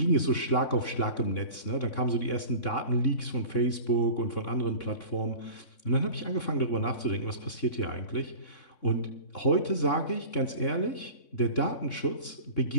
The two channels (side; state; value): right; late; 3.6 ms